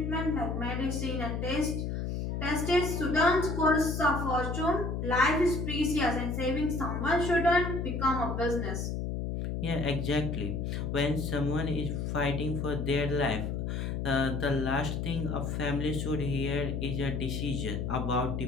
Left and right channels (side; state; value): left; noise; hum, 2 dB below the sound